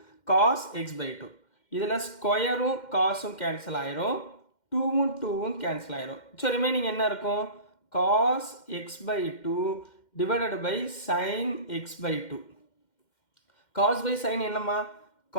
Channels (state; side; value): late; right; 2.1 ms